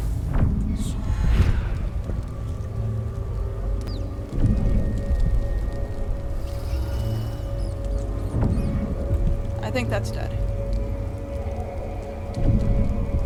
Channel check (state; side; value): identical; both; correlation 1.00